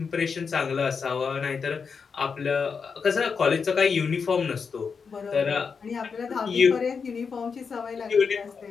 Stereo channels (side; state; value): right; quieter; 5.7 dB